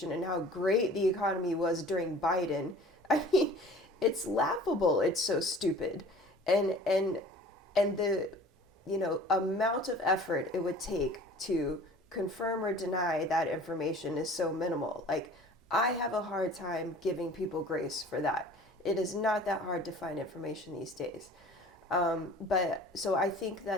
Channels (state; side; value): normal; both; correlation 0.46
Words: and how great the economy was during Biden, I mean, it's laughable. It's so stupid. And the amount of effort it would take to confirm or deny that information is so minimal. Like, I have a hard time giving people grace for that. It is not that hard to find information these days. But so I think